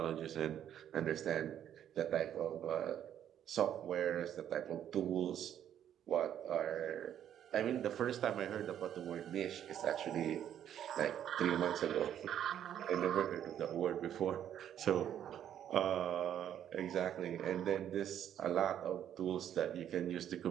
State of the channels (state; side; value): quieter; left; 10.2 dB